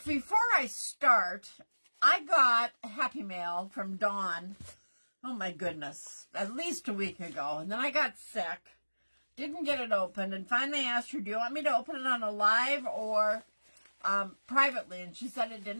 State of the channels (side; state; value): both; inverted; correlation -1.00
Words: Before I start, I got a Happy Mail from Dawn, oh my goodness, at least a week ago. And then I got sick, didn't get it opened, and finally asked her, do you want me to open it on a live or privately? And she said it